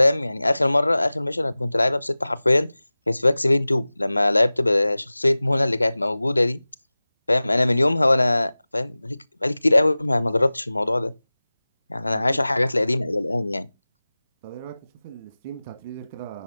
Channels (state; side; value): inverted; both; correlation -0.98